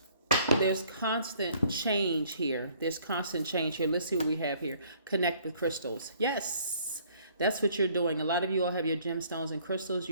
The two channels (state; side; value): inverted; both; correlation -0.60